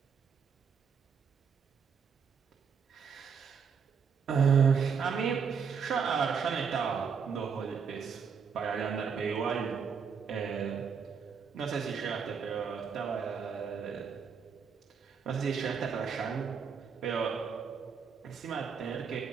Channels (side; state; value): left; quieter; 6.3 dB